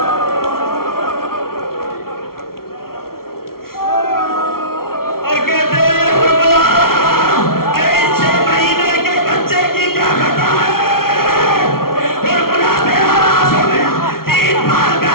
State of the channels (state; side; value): late; right; 0.93 ms